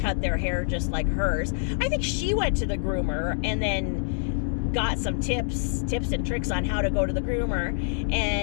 their hair just like hers. I think she went to the groomer and then got some tips and tricks on how to go to the groomer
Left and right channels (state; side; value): silent; right; 61 dB below the other